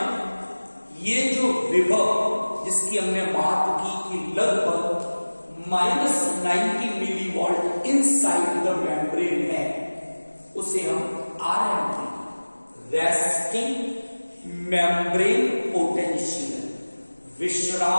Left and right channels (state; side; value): inverted; both; correlation -1.00